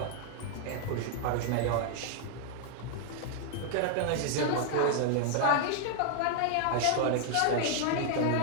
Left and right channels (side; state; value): both; different; correlation -0.01